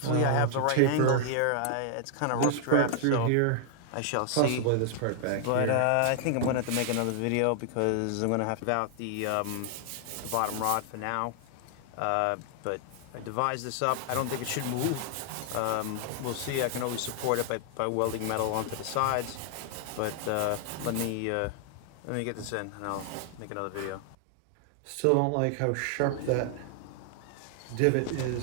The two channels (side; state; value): both; different; correlation 0.00